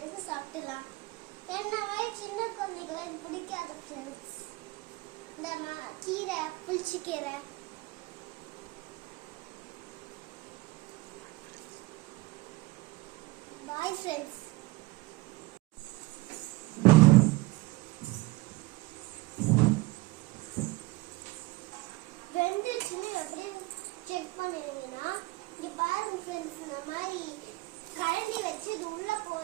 சாப்பிடலாம். என்ன மாதிரி சின்ன குழந்தைகளும் எனக்கு பிடிக்காத ஃப்ரெண்ட்ஸ். இந்த கீரை புளிச்சக்கீரை பாய் ஃப்ரெண்ட்ஸ். வெந்துச்சுன்னு எப்படி செக் பண்ணிடுவீங்கன்னா இங்க பாருங்க ஃப்ரெண்ட்ஸ். இந்த மாதிரி கரண்டி வச்சு இது உள்ள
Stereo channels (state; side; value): quieter; left; 20.9 dB